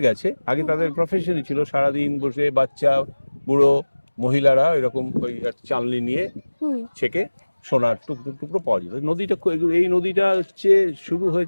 গেছে। আগে তাদের প্রফেশনই ছিল সারাদিন বসে বাচ্চা বুড়ো মহিলারা এরকম ওই চালনি নিয়ে ছেকে সোনার টুকরো টুকরো পাওয়া যেত। নদীটা এই নদীটা হচ্ছে শুরু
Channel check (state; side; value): inverted; both; correlation -1.00